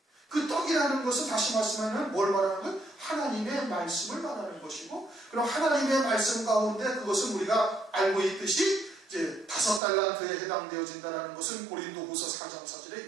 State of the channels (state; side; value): drops out; left; at 9.8 s